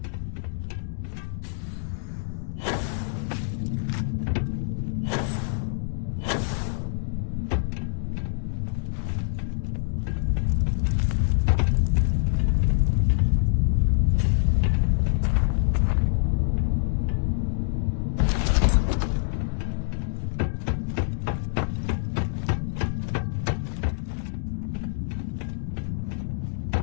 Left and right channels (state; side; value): silent; right; digital silence